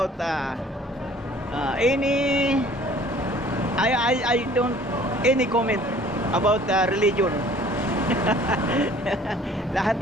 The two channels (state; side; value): normal; both; correlation 0.53